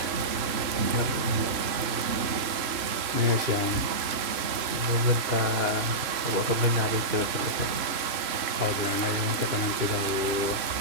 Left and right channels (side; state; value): left; late; 3.0 ms